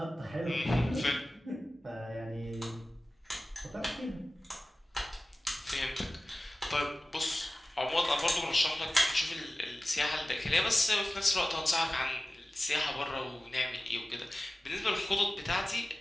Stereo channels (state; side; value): normal; both; correlation 0.96